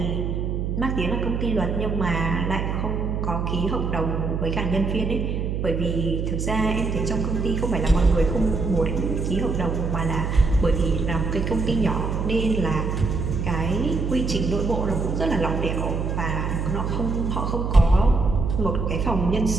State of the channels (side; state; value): right; noise; hum, 1 dB below the sound